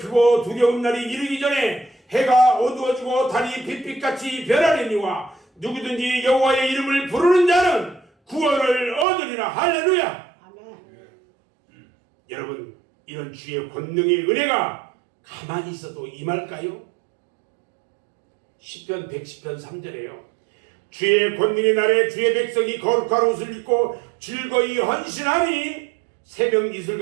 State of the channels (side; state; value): left; drops out; at 9.1 s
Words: 두려운 날이 이르기 전에 해가 어두워지고 달이 빛빛같이 변하려니와 누구든지 여호와의 이름을 부르는 자는 구원을 얻으리라. 할렐루야. 아멘. 여러분, 이런 주의 권능의 은혜가 가만히 있어도 임할까요? 시편 110편 3절에요. 주의 권능의 날에 주의 백성이 거룩한 옷을 입고 즐거이 헌신하니 새벽 이슬